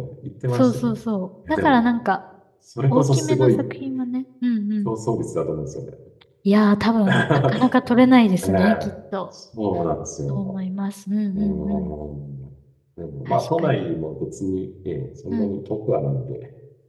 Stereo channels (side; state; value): both; identical; correlation 1.00